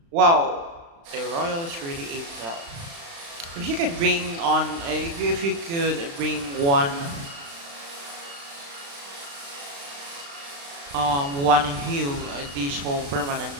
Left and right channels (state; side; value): late; left; 35 ms